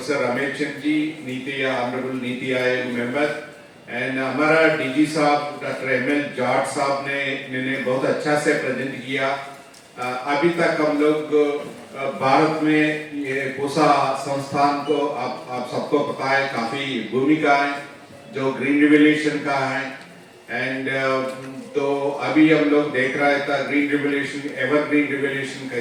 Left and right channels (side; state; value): both; identical; correlation 1.00